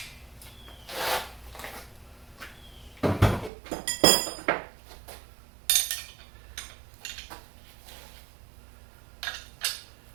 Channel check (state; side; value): drops out; left; at 3.5 s